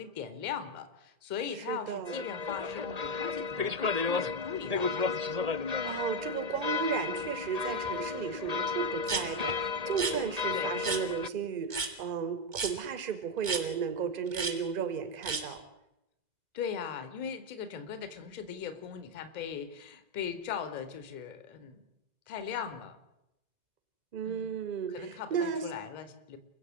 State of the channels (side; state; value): left; late; 2.2 ms